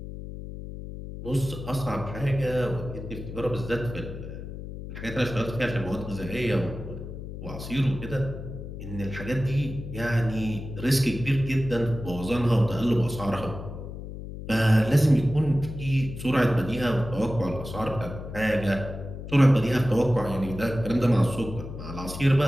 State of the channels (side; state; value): left; noise; hum, 10 dB below the sound